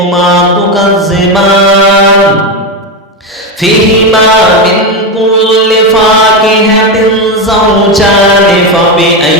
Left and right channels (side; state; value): both; normal; correlation 0.13